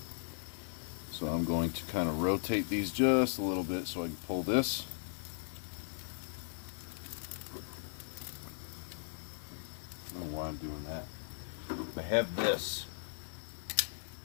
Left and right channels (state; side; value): silent; right; digital silence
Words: So I'm going to kind of rotate these just a little bit so I can pull this. I don't know why I'm doing that. I have this.